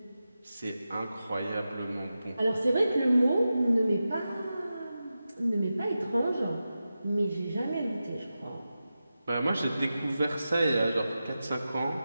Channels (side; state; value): both; inverted; correlation -0.92